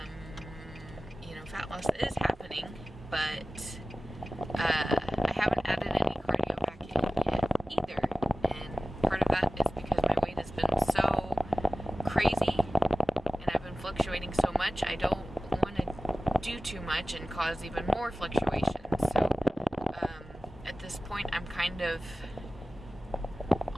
You know, fat loss is happening, but I haven't added any cardio back in yet either, and part of that is because my weight has been so crazy, and I've been fluctuating so much, I don't want to do too much and cause even more fluctuations. So at this point, I'm kind of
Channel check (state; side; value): normal; both; correlation 0.96